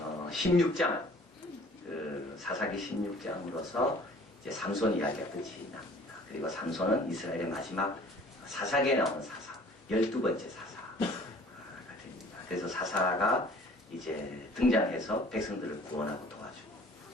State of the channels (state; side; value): normal; both; correlation 0.51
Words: 16장 사사기 16장으로서 이제 삼손 이야기가 끝이 납니다. 그리고 삼손은 이스라엘의 마지막 사사기에 나오는 사사, 12번째 사사가 됩니다. 그래서 사사가 이제 등장해서 백성들을 구원하고 도와주고,